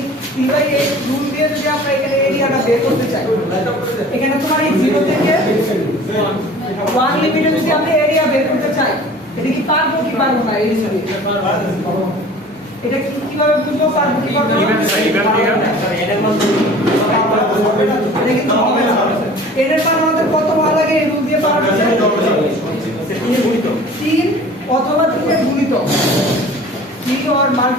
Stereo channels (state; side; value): normal; both; correlation 0.45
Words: 3/8 রুল দিয়ে যদি আমরা এখানে এরিয়াটা বের করতে চাই এখানে তোমার এই 0 থেকে 1 লিমিটে যদি আমরা এরিয়া বের করতে চাই এটা কি পারবো কি পারবো না এই হিসাবে এটা কিভাবে বুঝবো পারবো কি পারবো না এর মান আমাদের কত বার লাগে এই রুল দিয়ে পাওয়া যাচ্ছে 3 অথবা 3 এর গুণিতক 3 or